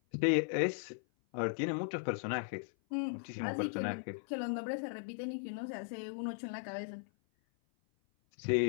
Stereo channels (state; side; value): silent; right; 53 dB below the other